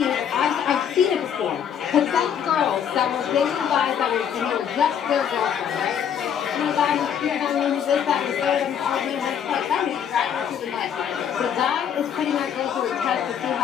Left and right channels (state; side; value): quieter; right; 8.5 dB